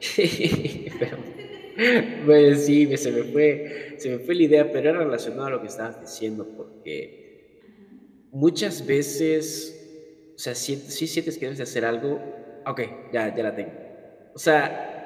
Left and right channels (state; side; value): identical; both; correlation 1.00